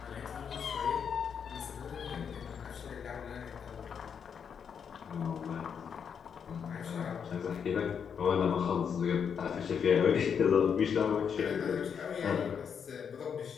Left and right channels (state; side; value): quieter; right; 7.2 dB